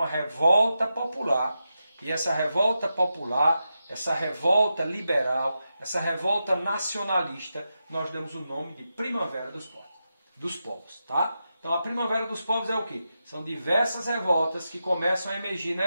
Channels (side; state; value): both; inverted; correlation -0.88